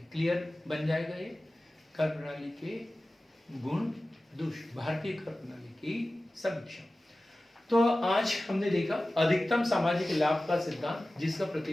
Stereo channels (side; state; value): both; normal; correlation 0.96